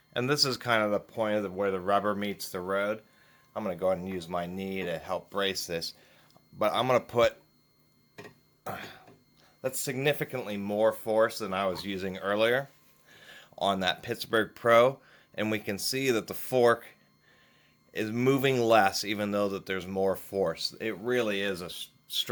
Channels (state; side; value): identical; both; correlation 1.00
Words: And this is kind of the point of where the rubber meets the road. I'm going to go ahead and use my knee to help brace this, but I'm going to put that's significantly more force than I was using earlier on that Pittsburgh Pro. And we can see that the fork is moving less, even though that there's more force. It really is a